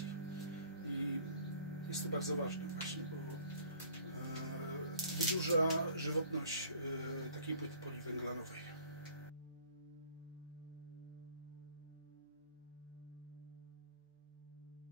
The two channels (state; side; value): inverted; both; correlation -0.53